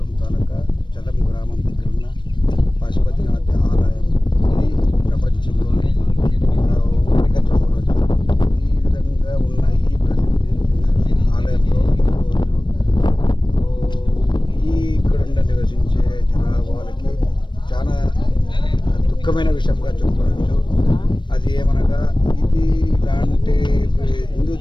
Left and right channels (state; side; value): late; right; 0.22 ms